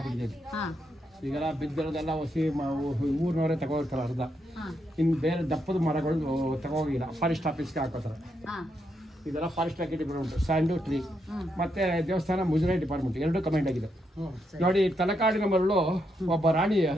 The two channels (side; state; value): both; normal; correlation 0.80